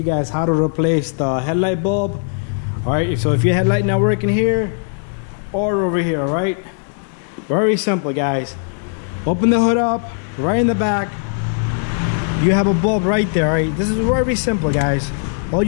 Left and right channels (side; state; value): right; silent; 60 dB below the other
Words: guys how to replace the headlight bulb. Alright, so if your headlight not working here or over here, alright, very simple guys. Open the hood up, right in the back you have a bulb right there. Alright, this is very simple guys. All